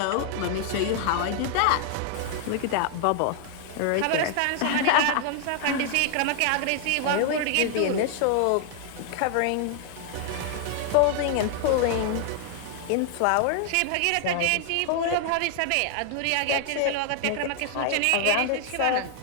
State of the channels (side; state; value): both; different; correlation 0.00